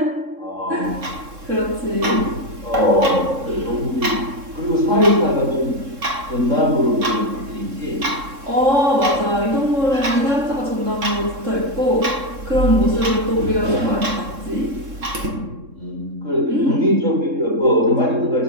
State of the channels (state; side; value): late; left; 3.7 ms